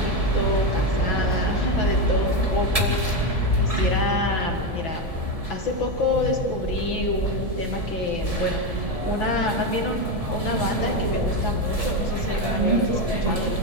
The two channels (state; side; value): late; left; 1.7 ms